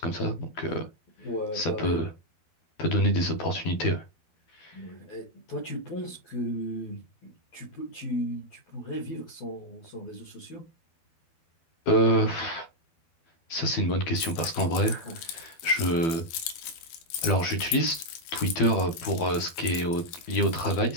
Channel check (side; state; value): right; late; 12 ms